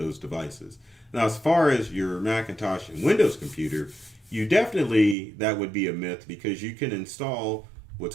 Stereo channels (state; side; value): drops out; left; at 5.2 s